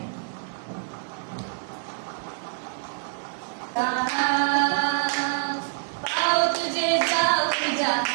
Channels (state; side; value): silent; left; digital silence